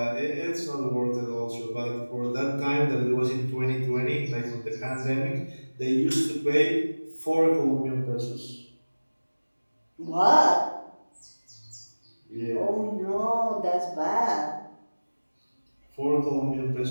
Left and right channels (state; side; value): inverted; both; correlation -1.00